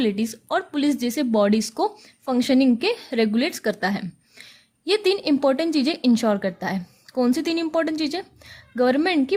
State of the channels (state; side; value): identical; both; correlation 1.00